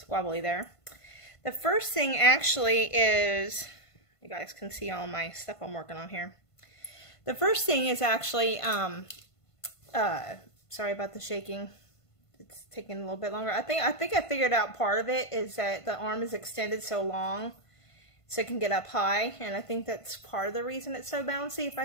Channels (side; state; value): right; late; 1.5 ms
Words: there. The first thing actually is, you guys can see all my stuff I'm working on here. The first thing is actually, sorry about the shaking. It's taking a little bit longer. I think I figured out part of it is that the arm is extended so long so it can get up high, and I think that's part of the reason it's so bouncy if